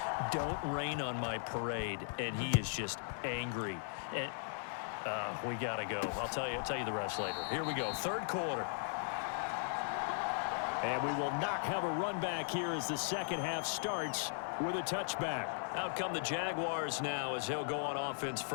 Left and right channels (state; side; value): silent; right; digital silence